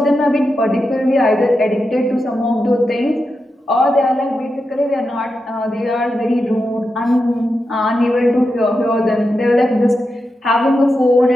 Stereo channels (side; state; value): both; normal; correlation 0.88